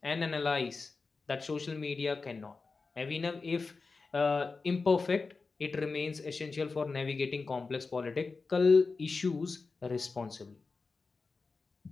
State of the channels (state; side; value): quieter; right; 4.2 dB